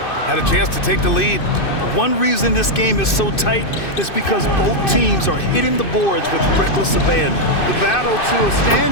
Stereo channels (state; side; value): late; right; 2.6 ms